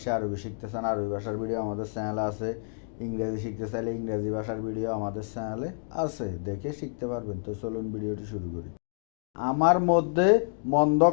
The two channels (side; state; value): right; silent; digital silence